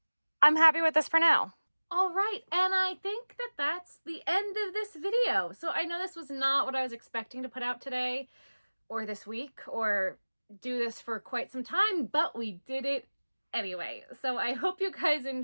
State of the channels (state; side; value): inverted; both; correlation -1.00